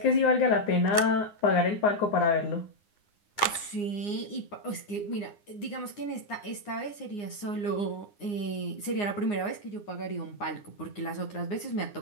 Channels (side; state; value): right; late; 9.7 ms